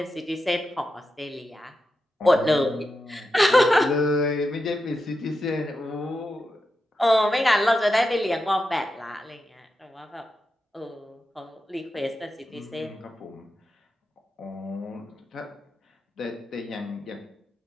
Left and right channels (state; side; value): normal; both; correlation 0.88